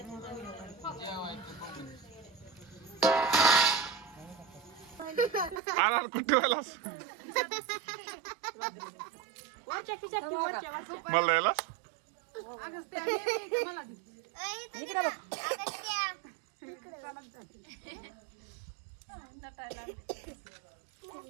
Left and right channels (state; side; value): drops out; left; at 5.6 s